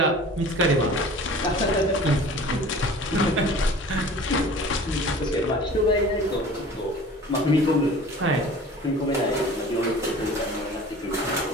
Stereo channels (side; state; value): both; normal; correlation 0.43